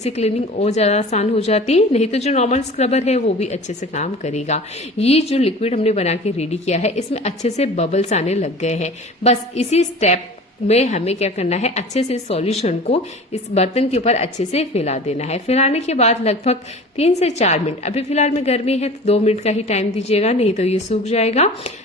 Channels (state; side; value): normal; both; correlation 0.39